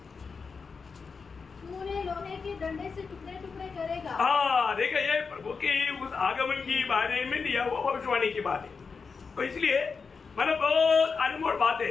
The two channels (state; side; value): quieter; right; 5.1 dB